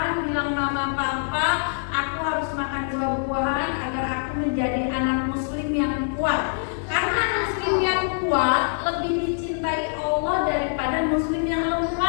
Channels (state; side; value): silent; right; digital silence